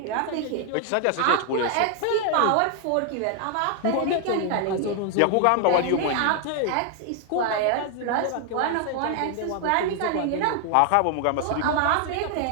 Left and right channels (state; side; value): different; both; correlation 0.00